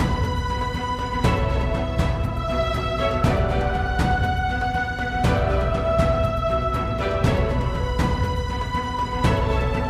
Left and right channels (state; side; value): identical; both; correlation 1.00